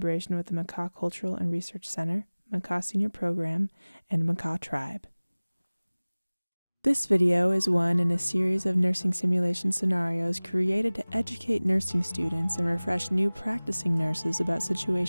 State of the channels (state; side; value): inverted; both; correlation -1.00